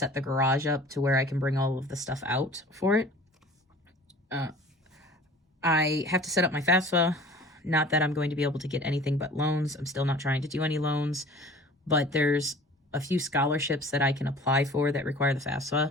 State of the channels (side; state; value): both; normal; correlation 0.45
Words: the garage up to where I can bring all of the stuff out for it. I have to set up my FAFSA. Not that I'm going to be able to get anything but loans. I'm still not trying to do any loans, but there's a few scholarships that I can apply for that require the